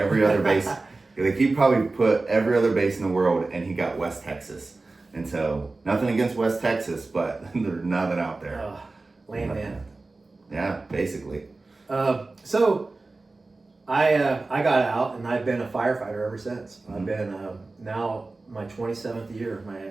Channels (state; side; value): quieter; left; 3.4 dB